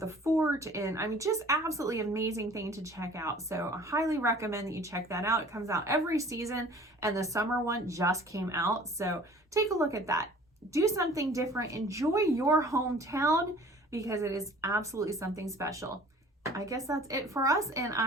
fort, and I mean, just absolutely amazing thing to check out. So I highly recommend that you check that out. It comes out every season, and the summer one just came out. So take a look at that. Do something different. Enjoy your hometown because it is absolutely something special. I guess that's it for us, and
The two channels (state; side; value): normal; both; correlation 0.49